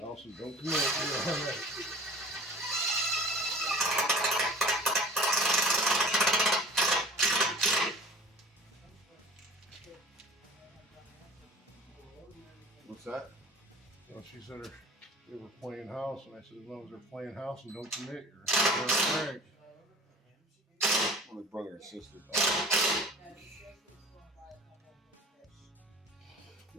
and don't commit, you're all right. What's that? Well, she said they were playing house, and I said, as long as they're playing house and don't commit, you're all right. Well, the brother and sister.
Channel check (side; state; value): both; normal; correlation 0.43